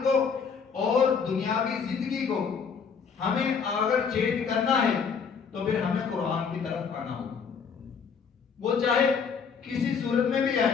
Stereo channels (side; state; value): right; quieter; 6.1 dB